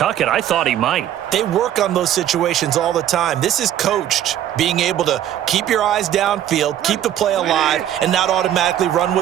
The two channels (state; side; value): quieter; left; 11.3 dB